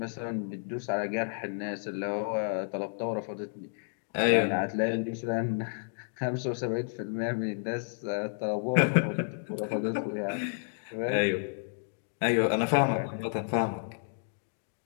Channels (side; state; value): right; silent; digital silence